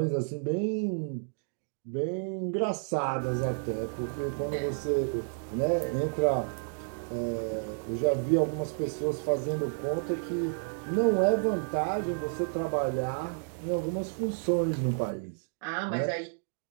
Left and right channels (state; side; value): silent; left; digital silence